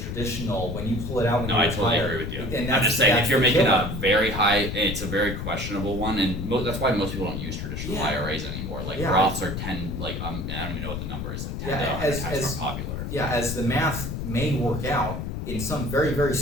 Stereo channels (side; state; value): left; noise; rumble, 5 dB below the sound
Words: when you pull it out when you retire. No, I totally agree with you. I'm just saying, if you're making a very high, it's a very questionable one, and that's why most people don't use traditional IRAs anymore. Roths are 10, I don't even know what the number is, 10 to 100 times more popular. Yeah, as the math may work out, in some very, very